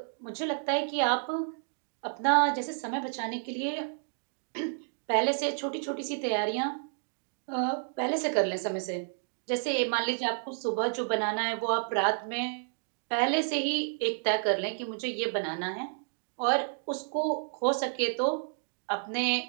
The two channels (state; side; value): silent; left; digital silence